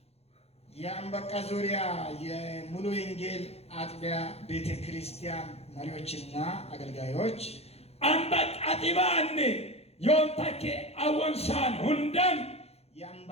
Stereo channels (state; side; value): late; right; 0.30 ms